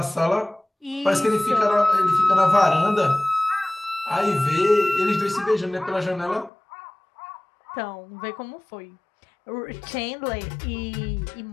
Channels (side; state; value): right; drops out; at 6.5 s